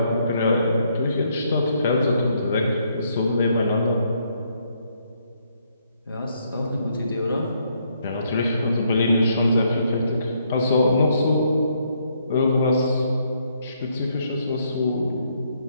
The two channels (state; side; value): inverted; both; correlation -0.73